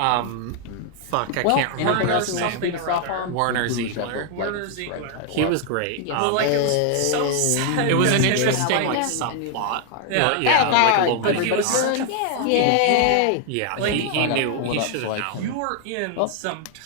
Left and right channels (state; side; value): different; both; correlation 0.00